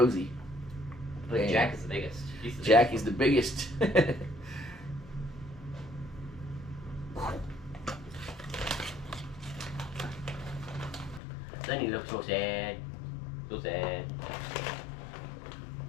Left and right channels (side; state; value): right; drops out; at 11.2 s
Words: But Jack is the biggest. Jack is the biggest. Sonny looks so sad. So sad.